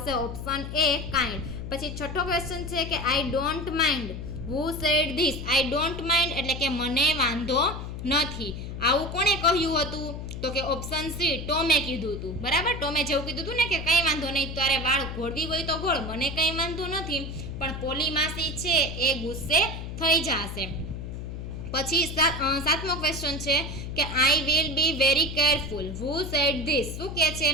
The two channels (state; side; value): noise; left; hum, 7 dB below the sound